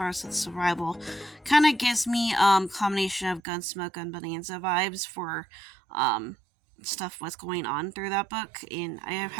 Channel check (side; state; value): left; drops out; at 3.4 s